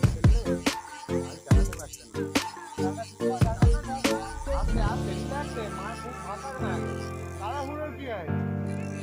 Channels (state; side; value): identical; both; correlation 1.00